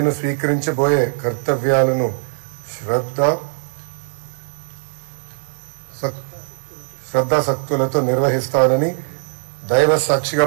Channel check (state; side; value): silent; left; digital silence